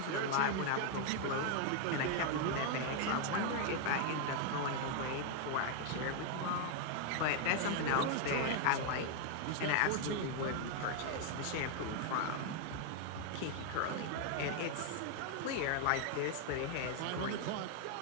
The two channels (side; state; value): both; different; correlation 0.00